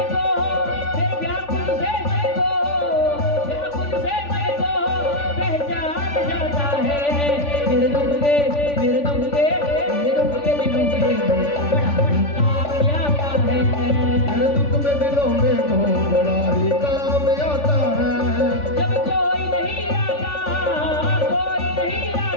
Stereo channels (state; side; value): late; right; 3.5 ms